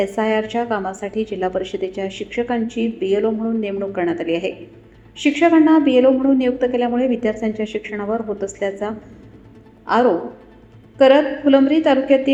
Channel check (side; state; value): both; identical; correlation 1.00